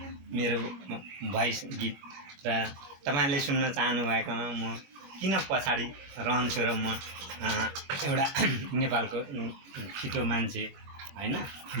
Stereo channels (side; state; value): left; late; 22 ms